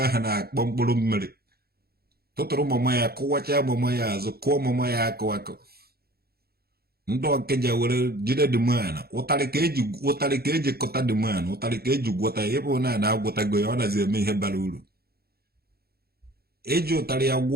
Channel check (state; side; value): late; left; 0.45 ms